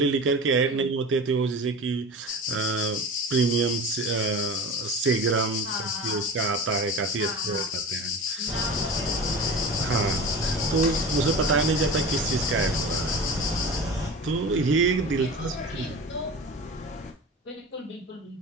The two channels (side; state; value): both; normal; correlation 0.33